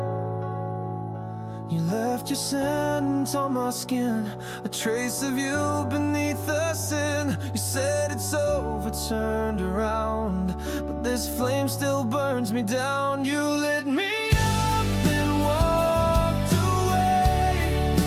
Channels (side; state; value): both; identical; correlation 1.00